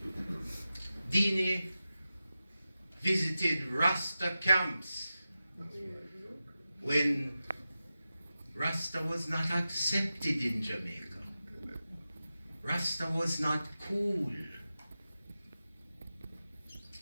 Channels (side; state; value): both; inverted; correlation -0.93